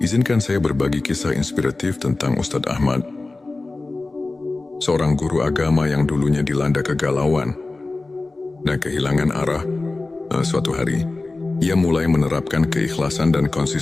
saya berbagi kisah inspiratif tentang Ustadz Ahmad, seorang guru agama yang dulunya dilanda kegalauan dan kehilangan arah. Suatu hari, ia mulai menerapkan keikhlasan dan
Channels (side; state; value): right; quieter; 3.3 dB